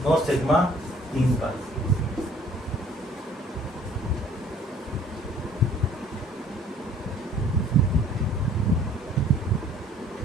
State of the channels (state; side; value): normal; both; correlation 0.55